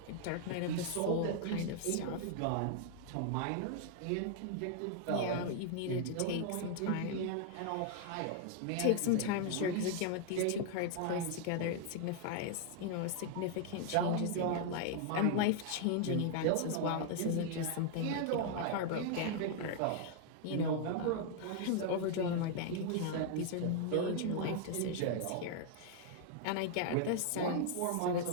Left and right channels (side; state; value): both; different; correlation 0.00